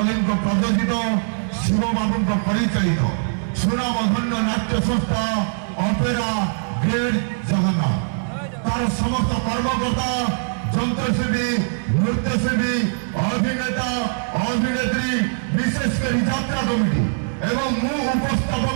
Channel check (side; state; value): left; silent; 65 dB below the other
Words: प्रदर्शित शिव बाबू परिचालित सुनामधन्य नाट्य संस्था अपेरा ग्रेड जगन्नाथ तार समस्त कर्मकर्ता जंत्रशिल्पी नृत्यशिल्पी अभिनेता अभिनेत्री विशेषकर यात्रा कमिटी एवं मु